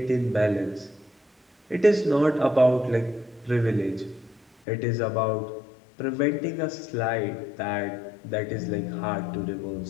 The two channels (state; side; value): drops out; right; at 4.5 s